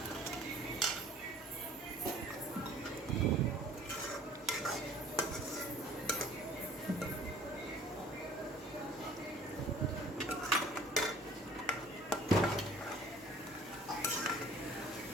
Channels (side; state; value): both; normal; correlation 0.51